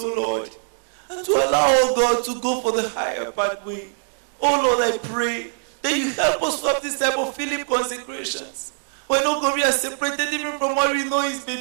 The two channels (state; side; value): silent; left; digital silence